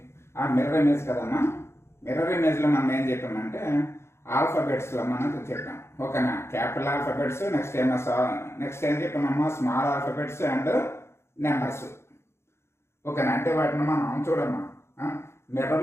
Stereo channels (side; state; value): right; late; 0.13 ms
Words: మిర్రర్ ఇమేజ్ కదమ్మా. మిర్రర్ ఇమేజ్లో మనం ఏం చెప్పామంటే ఆల్ఫాబెట్స్లో మనం చెప్పాం. ఓకేనా, క్యాపిటల్ ఆల్ఫాబెట్స్, నెక్స్ట్ ఏం చెప్పామమ్మా స్మాల్ ఆల్ఫాబెట్స్ అండ్ నెంబర్స్. ఓకేనా, అంటే వాటిని మనం చూడమ్మా